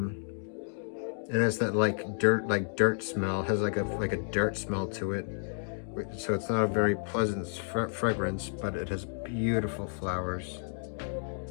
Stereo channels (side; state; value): right; silent; digital silence